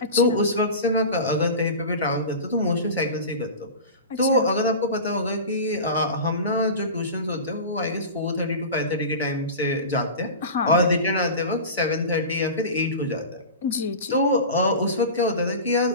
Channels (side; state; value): both; inverted; correlation -0.30